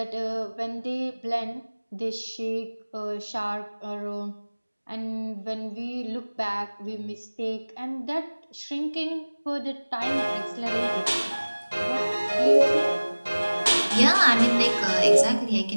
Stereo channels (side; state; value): both; inverted; correlation -1.00